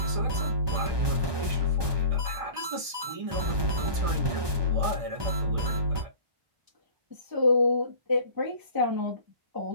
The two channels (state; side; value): late; left; 1.2 ms